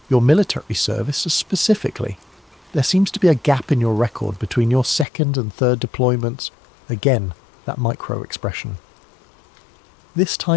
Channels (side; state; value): right; drops out; at 5.1 s